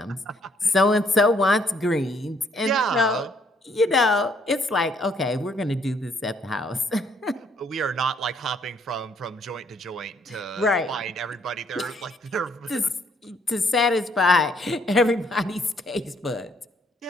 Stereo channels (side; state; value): both; normal; correlation 0.68